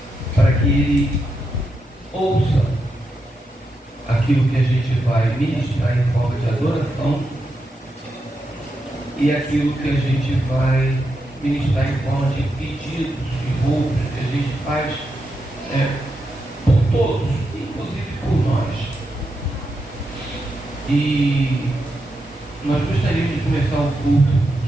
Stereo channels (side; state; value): both; normal; correlation 0.85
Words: para que Ele ouça aquilo que a gente vai ministrar em forma de adoração e aquilo que a gente vai ministrar em forma de pedidos e roubos que a gente faz por todos, inclusive por nós. E nós gostaríamos de começar o culto